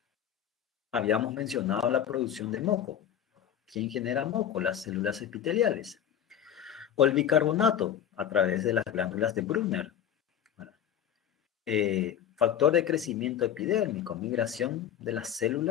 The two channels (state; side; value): quieter; right; 9.6 dB